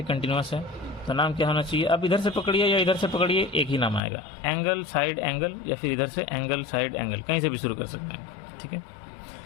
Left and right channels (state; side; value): drops out; right; at 4.0 s